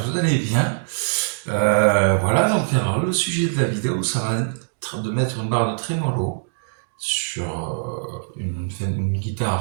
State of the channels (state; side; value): silent; left; digital silence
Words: vous allez bien. Voilà, donc alors le sujet de la vidéo, ça va être de mettre une barre de trémolo sur une